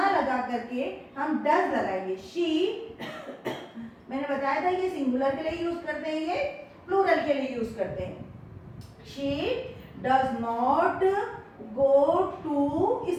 लगा करके हम डज लगाएंगे, शी मैंने बताया था ये सिंगुलर के लिए यूज करते हैं, ये प्लूरल के लिए यूज करते हैं। She does not go to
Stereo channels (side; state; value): both; identical; correlation 1.00